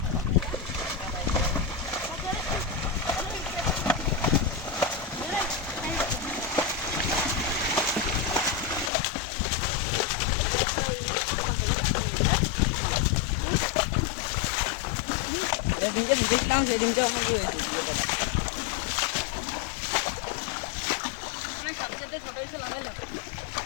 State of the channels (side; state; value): right; drops out; at 8.9 s